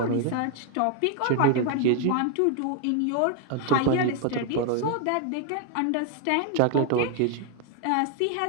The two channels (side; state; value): both; different; correlation 0.00